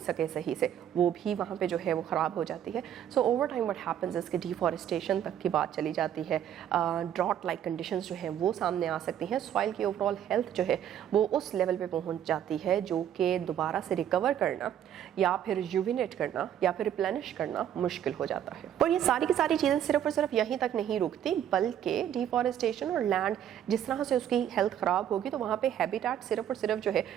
सके सही से, वो भी वहाँ पे जो है वो ख़राब हो जाती है. So over time what happens इसके डिफॉरेस्टेशन तक की बात चली जाती है. ड्रॉट लाइक कंडीशंस जो हैं वो सामने आ सकती हैं. सॉइल की ओवरऑल हेल्थ जो है वो उस लेवल पे पहुँच जाती है जो कि दोबारा से रिकवर करना या फिर रिजुविनेट करना या फिर रिप्लेनिश करना मुश्किल हो जाता है. और ये सारी की सारी चीज़ें सिर्फ और सिर्फ यहीं तक नहीं रुकती, बल्कि डिफॉरेस्टेशन और लैंड जिस तरह से उसकी हेल्थ ख़राब होगी तो वहाँ पर हैबिटेट सिर्फ और सिर्फ जो है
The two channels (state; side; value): quieter; left; 10.2 dB